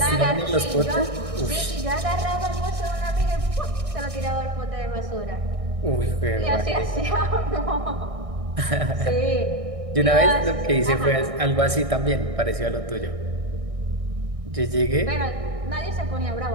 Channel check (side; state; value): left; late; 1.6 ms